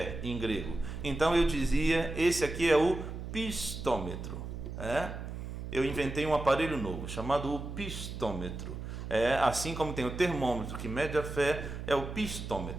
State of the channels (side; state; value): right; noise; hum, 8 dB below the sound